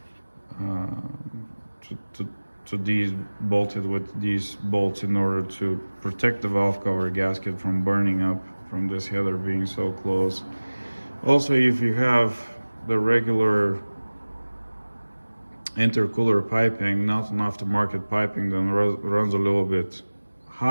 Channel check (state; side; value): inverted; both; correlation -1.00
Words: to these bolted with these bolts in order to protect the valve cover gasket from burning up from this header being so close. Also, if you have the regular intercooler piping, not an aftermarket piping that runs a little bit